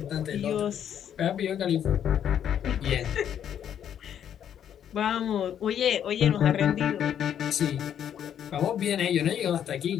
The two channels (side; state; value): right; quieter; 9.4 dB